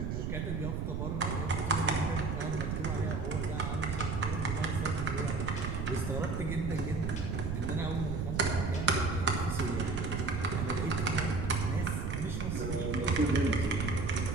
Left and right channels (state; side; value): noise; right; rumble, 1 dB below the sound